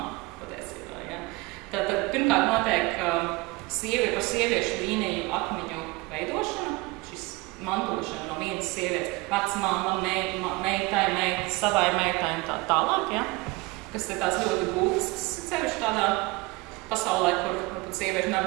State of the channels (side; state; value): left; quieter; 23.7 dB